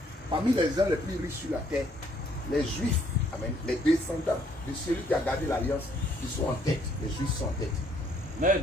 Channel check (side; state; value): both; normal; correlation 0.66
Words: parmi les gens les plus riches sur la terre, les Juifs, amen, les descendants de celui qui a gardé l'alliance, ils sont en tête. Les Juifs sont en tête. Amen.